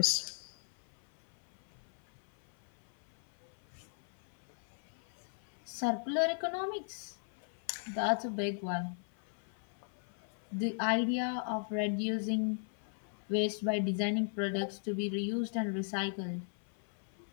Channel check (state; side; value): silent; right; 52 dB below the other